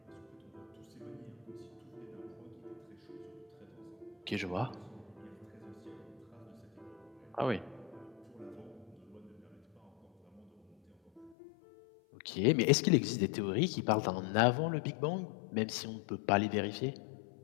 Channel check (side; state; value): right; drops out; at 11.4 s